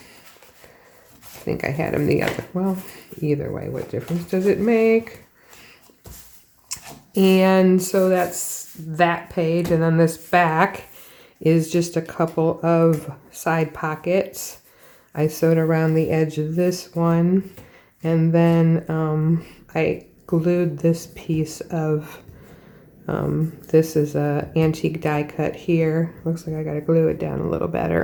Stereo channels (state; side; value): identical; both; correlation 1.00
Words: I think I had them the other, well, either way, what difference does it make? And so that's that page, and then this back is just a couple of side pockets. I sewed around the edge of this one, and then I glued this piece of this is a antique die cut here. Looks like I gotta glue it down a little